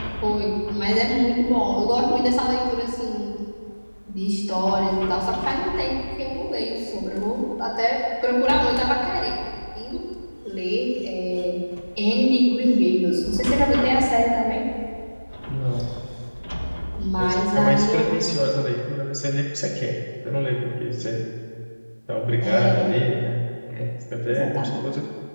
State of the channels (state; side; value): inverted; both; correlation -1.00